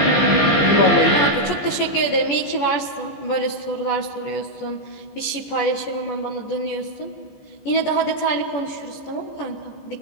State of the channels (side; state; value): right; late; 14 ms